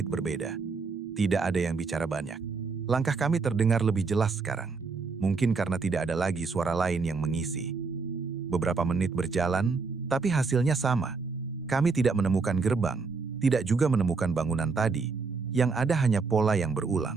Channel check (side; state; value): left; quieter; 4.6 dB